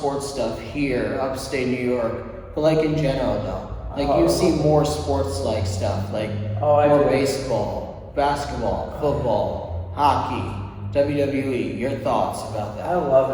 stuff here, upstate New York, but like in general though, like you see more sports like stuff, like more baseball, basketball, football, hockey, WWE. Your thoughts about that? I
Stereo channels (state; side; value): identical; both; correlation 1.00